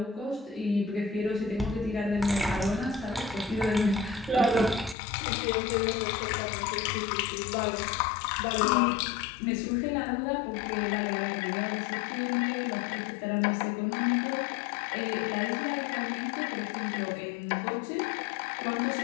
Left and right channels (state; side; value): drops out; right; at 5.0 s